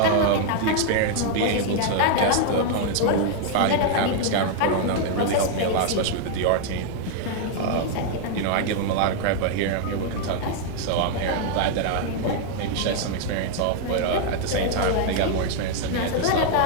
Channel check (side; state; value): both; different; correlation 0.00